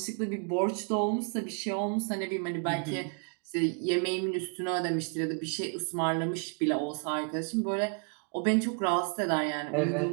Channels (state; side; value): quieter; left; 39.3 dB